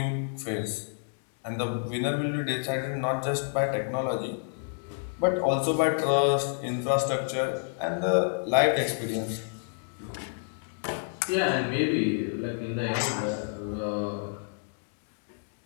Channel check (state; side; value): silent; right; digital silence